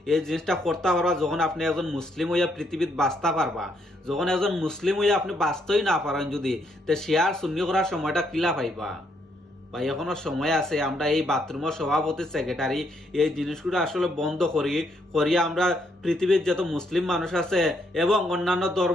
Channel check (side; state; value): both; normal; correlation 0.74